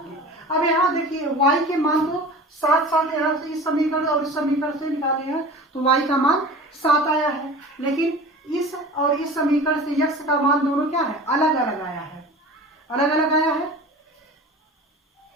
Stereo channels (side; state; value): both; normal; correlation 0.38